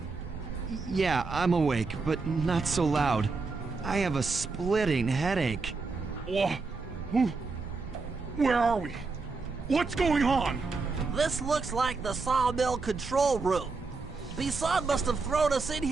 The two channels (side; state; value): left; quieter; 4.2 dB